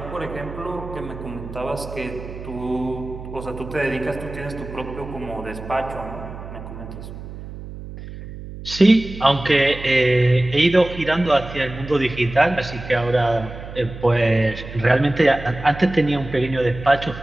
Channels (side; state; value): right; noise; hum, 12 dB below the sound